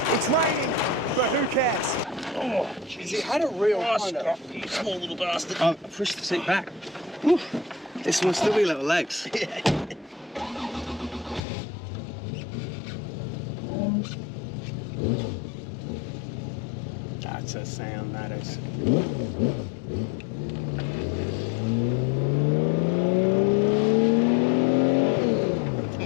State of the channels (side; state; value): right; drops out; at 11.4 s